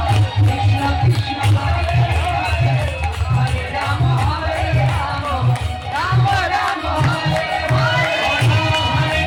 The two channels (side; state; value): both; identical; correlation 1.00